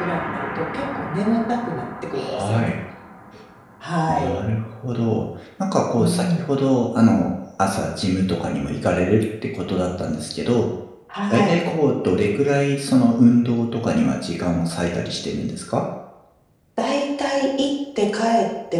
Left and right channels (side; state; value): both; identical; correlation 1.00